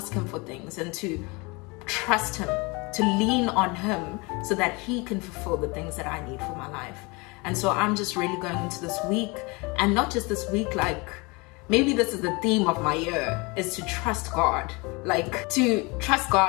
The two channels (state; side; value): quieter; right; 27.1 dB